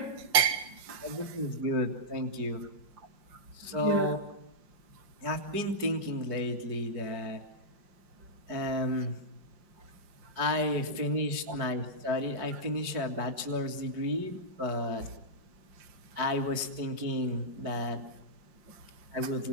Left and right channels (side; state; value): left; late; 4.6 ms